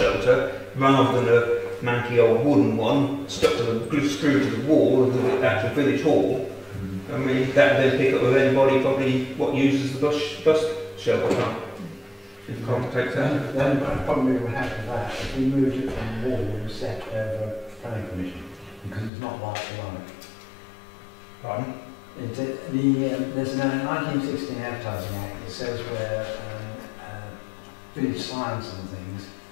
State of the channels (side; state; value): right; drops out; at 19.1 s